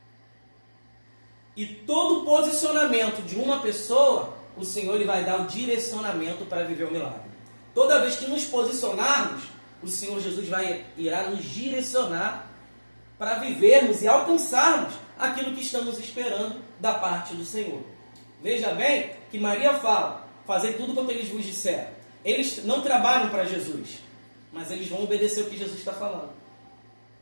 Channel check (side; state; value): both; inverted; correlation -1.00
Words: E todo posicionamento de uma pessoa, o Senhor ele vai dar o direcionamento para viver o milagre. Toda vez que nos posicionarmos, o Senhor Jesus irá nos direcionar para vivermos e alcançarmos aquilo que estamos esperando da parte do Senhor. Veja bem que Maria fala, fazei tudo quanto eles vos disseram. Eles não trabalham para Jesus, mas eles vão obedecer o que Jesus está falando.